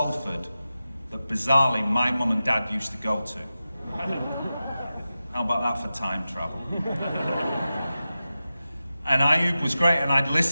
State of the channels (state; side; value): inverted; both; correlation -0.93